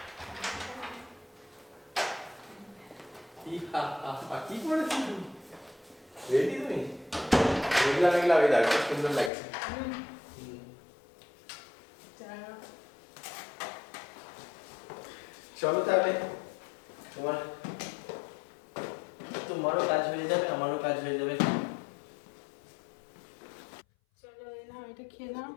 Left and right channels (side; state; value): right; drops out; at 9.3 s